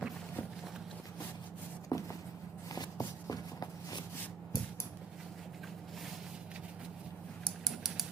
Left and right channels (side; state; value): left; quieter; 5.5 dB